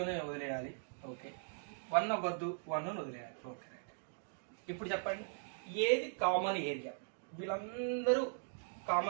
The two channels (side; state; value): left; silent; digital silence